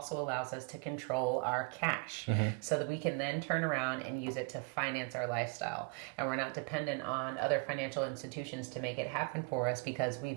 allows us to control our cash so that we can then turn around and use it to finance our lifestyle. And we're not dependent on other financial institutions to make it happen for us because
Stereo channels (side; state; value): left; quieter; 34.7 dB